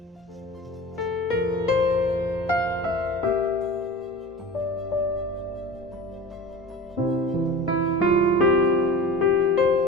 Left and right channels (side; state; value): both; normal; correlation 0.35